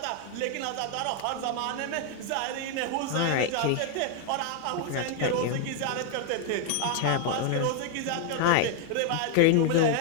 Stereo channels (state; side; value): different; both; correlation 0.00